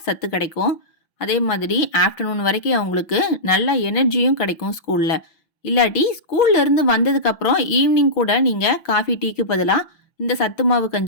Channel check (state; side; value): late; right; 5.8 ms